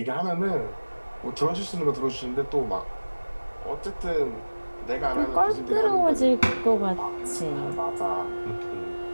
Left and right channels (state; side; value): inverted; both; correlation -1.00